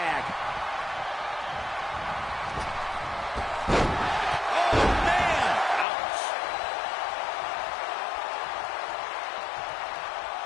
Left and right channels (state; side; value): drops out; right; at 5.9 s